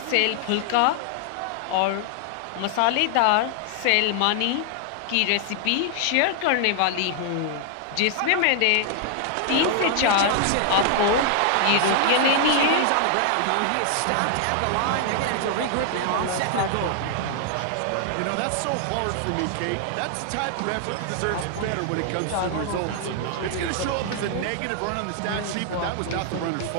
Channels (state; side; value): different; both; correlation 0.00